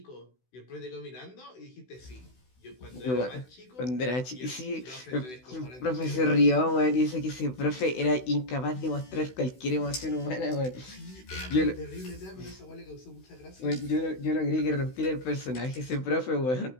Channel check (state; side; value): late; right; 16 ms